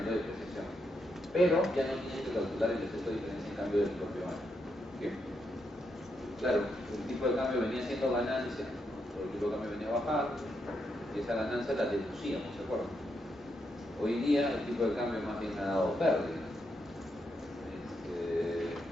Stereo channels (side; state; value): both; normal; correlation 0.81